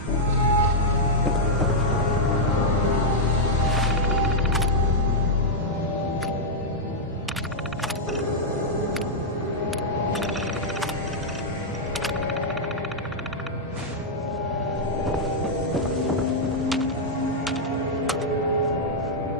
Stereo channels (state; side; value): normal; both; correlation -0.04